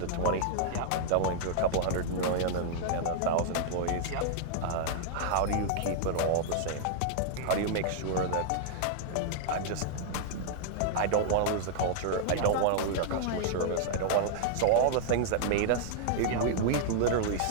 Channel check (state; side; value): different; both; correlation -0.01